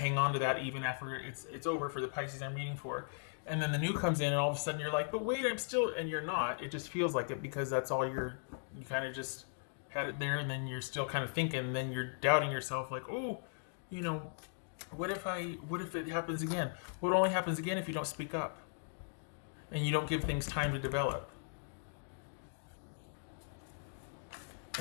on to that even after it's over for the Pisces I'm reading for. And then the new comes in and all of a sudden you're like, but wait, I'm still, and you're not. It just feels like it because that's all you kind of just had it there, and then you're still kind of thinking, and then you're doubting yourself like, oh, you know, what if it happens again? Well, it only happens again if you don't speak up and you don't give things time to develop.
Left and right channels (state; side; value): silent; right; digital silence